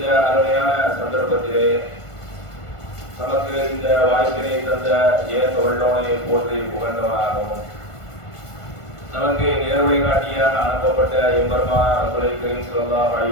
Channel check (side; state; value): right; late; 1.5 ms